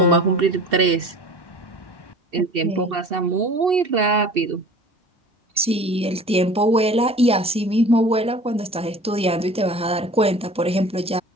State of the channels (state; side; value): normal; both; correlation 0.43